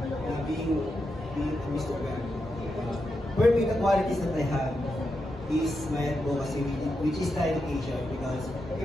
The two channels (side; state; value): both; normal; correlation 0.86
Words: Being Mr. Grant. For me, the qualities that I have is my advocacy, which is the education. Because